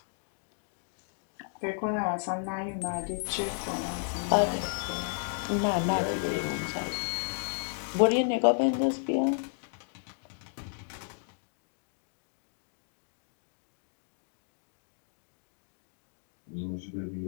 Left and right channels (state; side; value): silent; right; digital silence